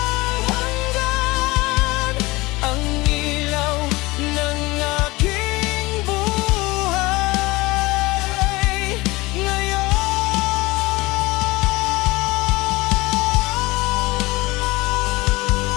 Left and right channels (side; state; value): right; quieter; 21.7 dB